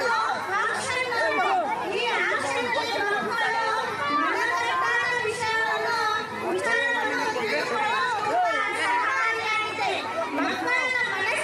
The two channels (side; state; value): both; identical; correlation 1.00